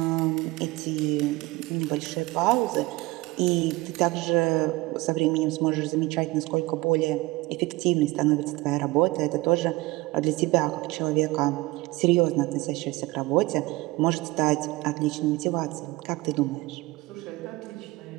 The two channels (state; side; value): quieter; left; 21.1 dB